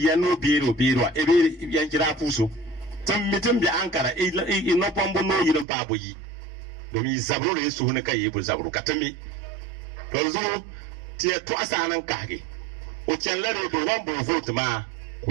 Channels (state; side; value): drops out; left; at 5.7 s